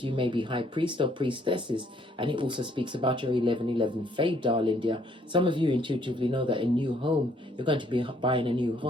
You may be high priest or priestesses. And it also speaks about your 1111 fade, darling dear. Some of you intuitively know that a new home, you're going to be buying a new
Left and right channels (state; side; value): normal; both; correlation 0.66